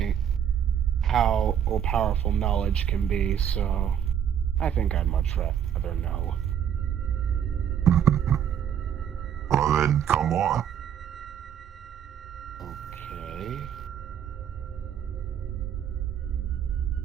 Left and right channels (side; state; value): left; quieter; 9.0 dB